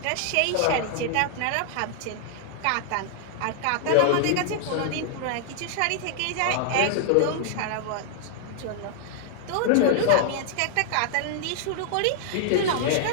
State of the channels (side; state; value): both; different; correlation -0.01